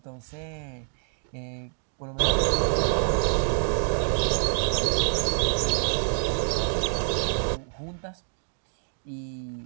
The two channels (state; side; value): silent; left; digital silence